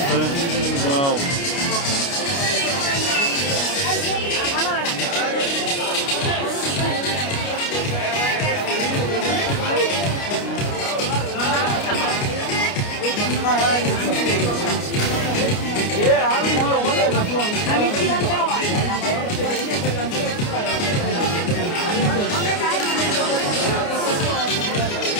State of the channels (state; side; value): late; right; 29 ms